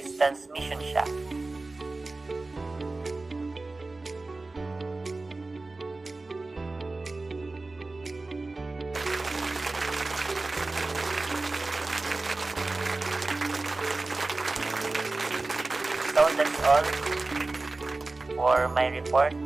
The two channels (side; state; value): left; quieter; 3.3 dB